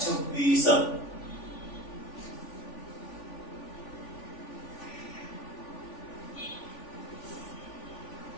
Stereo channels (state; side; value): late; right; 3.4 ms